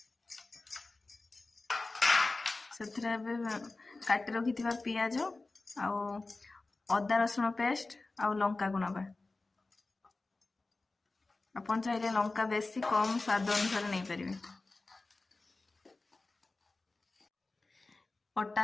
ସେଥିରେ ଏବେ କାଟି ରଖିଥିବା ପିଆଜ ଆଉ ଅଦା ରସୁଣ ପେଷ୍ଟ ଆଉ ଲଙ୍କାକୁ ନବା। ଆପଣ ଚାହିଁଲେ ଲଙ୍କା ବେଶୀ କମ ସ୍ୱାଦ ଅନୁସାରେ ନେଇପାରିବେ।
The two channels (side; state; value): right; quieter; 3.4 dB